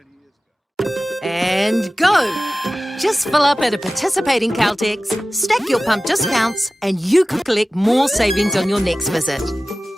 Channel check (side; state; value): both; normal; correlation 0.96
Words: years ago. And go! Just fill up at a participating Caltex, stack your pump discounts, and you could collect more savings on your next visit.